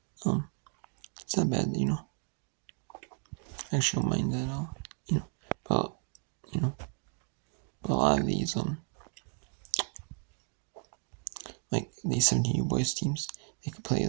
it's not bad, I actually don't mind that at all, but but a lot of these like these 17U boys teams, they could play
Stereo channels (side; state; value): left; quieter; 38.3 dB